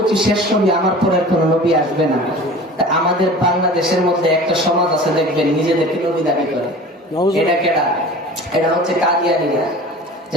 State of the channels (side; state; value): both; normal; correlation 0.40